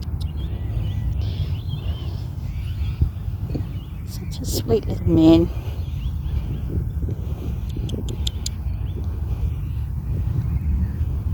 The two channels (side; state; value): both; identical; correlation 1.00